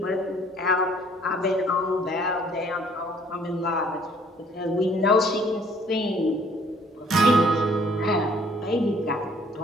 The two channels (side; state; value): both; normal; correlation 0.59